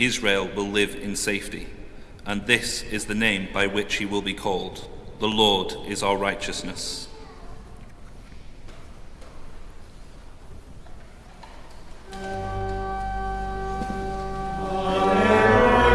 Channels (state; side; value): identical; both; correlation 1.00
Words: will live in safety. And this is the name by which he will be called. The Lord is our righteousness.